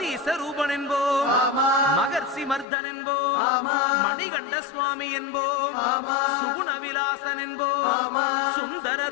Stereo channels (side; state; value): right; drops out; at 2.7 s